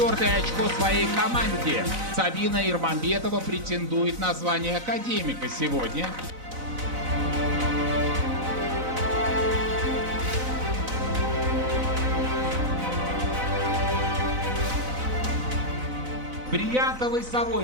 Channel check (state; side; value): late; left; 4.0 ms